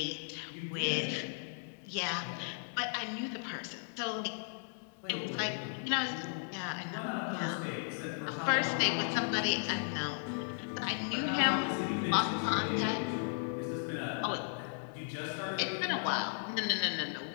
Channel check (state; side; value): silent; right; digital silence